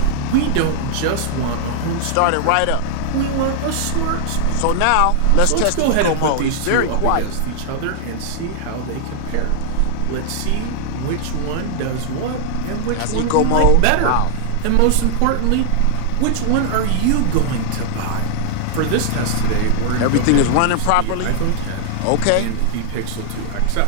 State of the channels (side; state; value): both; different; correlation 0.00